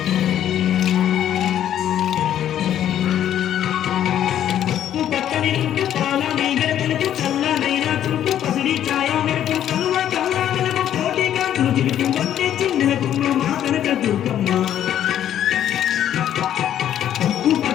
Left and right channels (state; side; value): quieter; right; 10.8 dB